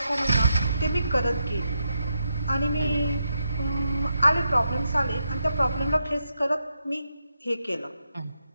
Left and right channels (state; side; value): inverted; both; correlation -0.83